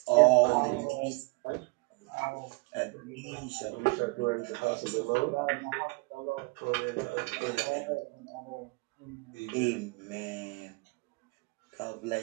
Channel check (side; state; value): left; quieter; 27.7 dB